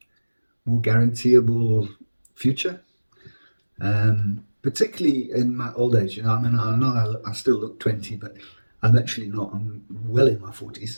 guaranteeable future, particularly in my old age. I know I still look 20, but I'm actually not. I'm well in my 40s,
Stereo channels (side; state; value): both; inverted; correlation -1.00